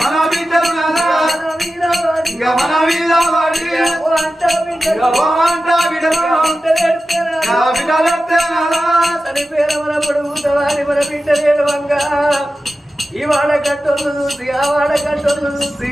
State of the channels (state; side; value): normal; both; correlation 0.93